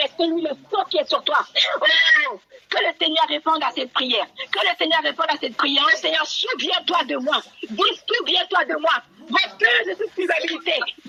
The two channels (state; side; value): identical; both; correlation 1.00